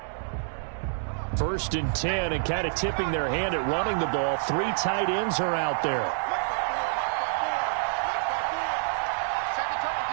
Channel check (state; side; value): silent; left; digital silence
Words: First and 10, and kind of tipping their hand at running the ball. 3 tight ends are out there.